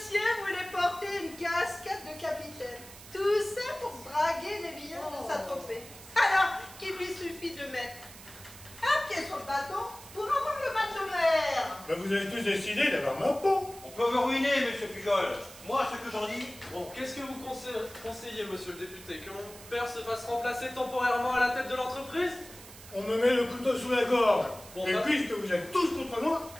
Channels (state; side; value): noise; right; hiss, 17 dB below the sound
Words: voulait porter une casquette de capitaine. Tout ça pour draguer les billets de sa tropée. Alors qu'il lui suffit de mettre un pied sur le bateau pour avoir le mal de mer. Ben, vous avez tous décidé d'avoir ma peau. On peut vous ruiner, monsieur Pujol. Moi, ce que j'en dis, Bon, qu'est-ce que vous conseillez, monsieur le député? Que mon père se fasse remplacer temporairement à la tête de l'entreprise? On me met le couteau sous la gorge. Bon, Et bah- puisque vous êtes tous contre moi,